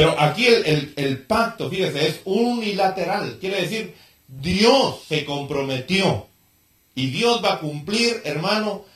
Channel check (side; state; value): both; identical; correlation 1.00